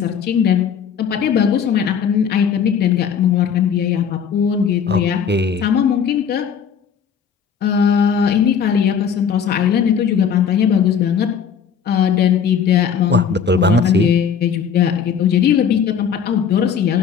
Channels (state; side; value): quieter; right; 7.2 dB